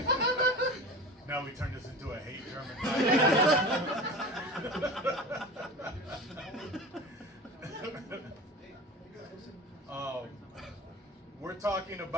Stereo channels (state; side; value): normal; both; correlation 0.34